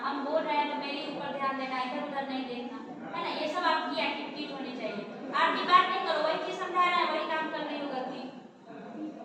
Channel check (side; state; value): both; identical; correlation 1.00